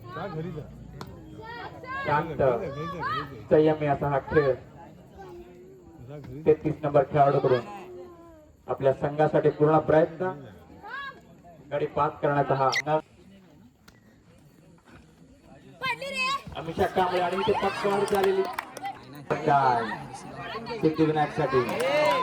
शांत संयमी असा हा खेळ 33 नंबर खेळाडूकडून आपल्या संघासाठी पूर्ण प्रयत्न गडी बाद करण्याचा हा. अमिषा कांबळे आणि इथे पक्कावर झालेली सिद्धिविनायक साठी.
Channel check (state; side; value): identical; both; correlation 1.00